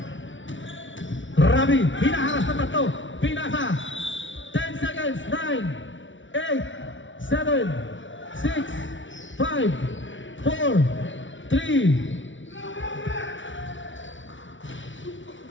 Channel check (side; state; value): right; late; 0.56 ms